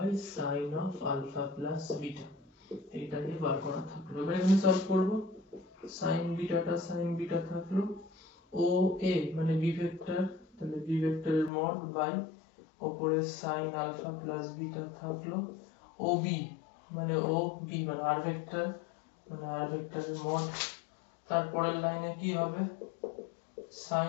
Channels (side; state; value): right; drops out; at 11.5 s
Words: sin of alpha plus beta, এইটাকে বার করা থাকলো। এবার এখানে সলভ করব, sin বিটা থাকলো, ও এ মানে b ভেক্টর, তাহলে b ভেক্টরের মড বাই উপরে sin alpha plus beta থাকলো, ও বি মানে r ভেক্টর, মানে r ভেক্টরের মড, তারপরের লাইনে কি হবে,